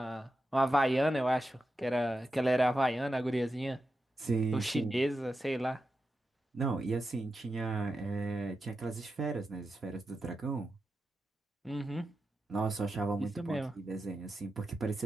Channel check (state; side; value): normal; both; correlation 0.90